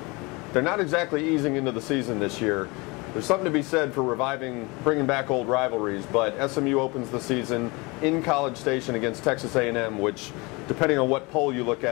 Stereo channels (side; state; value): right; quieter; 26.2 dB